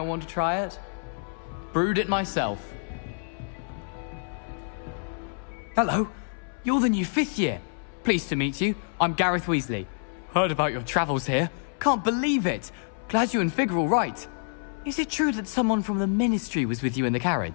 want to try it? Brewed it myself. Hello. You're the new 5th year. Pleased to meet you. I'm Gareth Weasley. Heard about your travels here. Can't believe it. Glad you and Fig are all right. Is it true that someone from the Ministry was with you in the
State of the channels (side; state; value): right; silent; 60 dB below the other